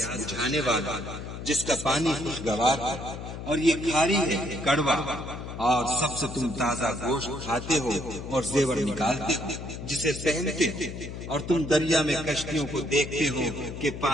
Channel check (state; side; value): noise; left; hum, 9 dB below the sound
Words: بجھانے والا، جس کا پانی خوشگوار ہے، اور یہ کھاری ہے کڑوا۔ اور سب سے تم تازہ گوشت کھاتے ہو اور زیور نکالتے ہو جسے پہنتے ہو، اور تم دریا میں کشتیوں کو دیکھتے ہو کہ